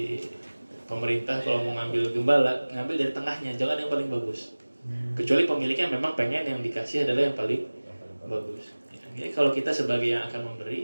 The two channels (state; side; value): inverted; both; correlation -1.00